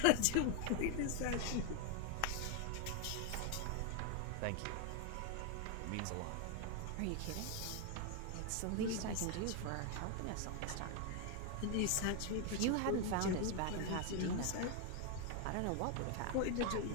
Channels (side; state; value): both; different; correlation 0.01